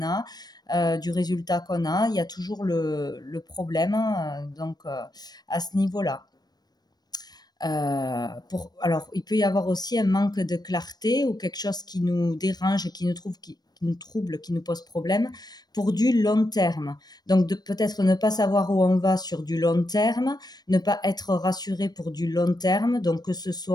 a, du résultat qu'on a. Il y a toujours le problème donc à ce niveau-là. Alors, il peut y avoir aussi un manque de clarté ou quelque chose qui nous dérange, qui nous trouble, qui nous pose problème pour du long terme. Donc, peut-être ne pas savoir où on va sur du long terme, ne pas être rassuré pour du long terme, donc que ce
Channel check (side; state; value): right; late; 0.19 ms